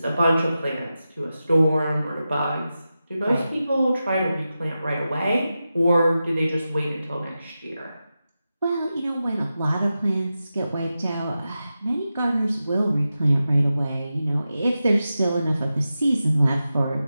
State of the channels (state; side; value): inverted; both; correlation -0.92